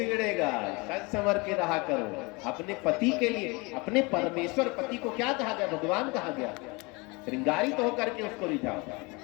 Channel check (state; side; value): quieter; right; 27.0 dB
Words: सज संवर के रहा करो अपने पति के लिए। अपने परमेश्वर पति को क्या कहा गया? भगवान कहा गया। श्रृंगारित तो होकर के उसको रिझाओ।